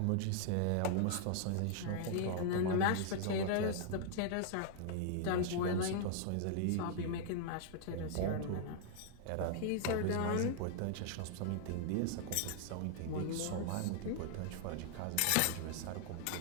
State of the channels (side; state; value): both; different; correlation 0.00